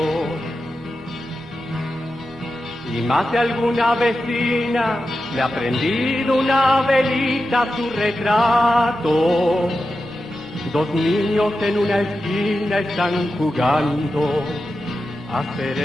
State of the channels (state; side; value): normal; both; correlation 0.91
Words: Y más de alguna vecina le ha prendido una velita a su retrato. Dos niños en una esquina están jugando a ser